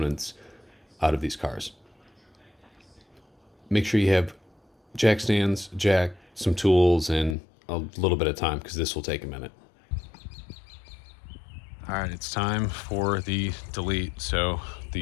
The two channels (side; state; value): right; drops out; at 7.4 s